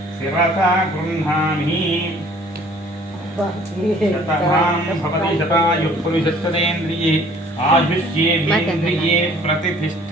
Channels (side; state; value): both; normal; correlation 0.55